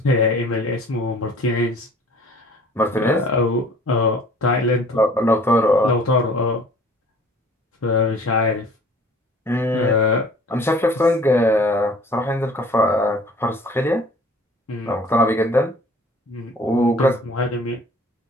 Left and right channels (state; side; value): normal; both; correlation 0.50